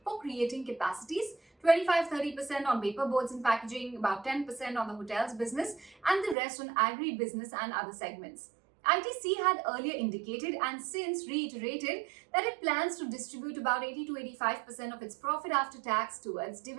for creating capacities, 25-30% on paper boards and packaging, about 10% on the hotels business, and the rest on agri business and other segments. ITC had earlier indicated and since reiterated that it plans to distribute about 80 to 85% of its profit after tax towards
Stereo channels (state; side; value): drops out; left; at 6.4 s